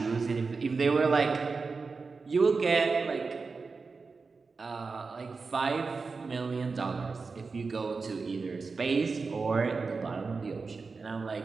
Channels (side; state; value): left; quieter; 4.5 dB